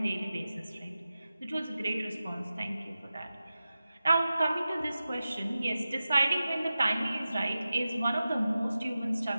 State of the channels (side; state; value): both; inverted; correlation -0.94